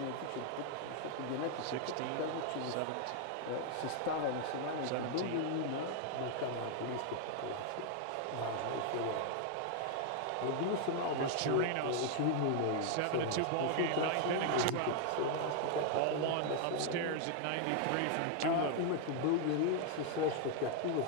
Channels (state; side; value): different; both; correlation 0.00